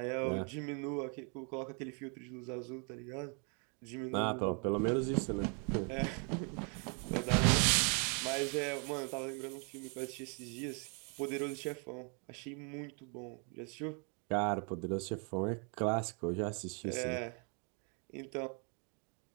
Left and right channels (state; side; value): quieter; left; 37.4 dB